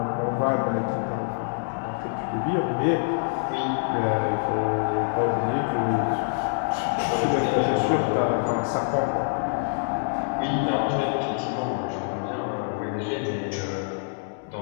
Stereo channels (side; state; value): right; silent; digital silence